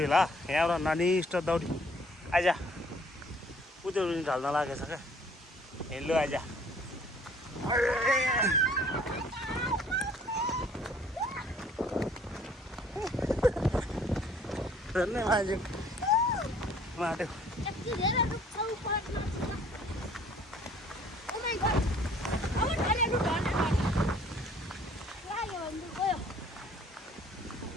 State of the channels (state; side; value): normal; both; correlation 0.57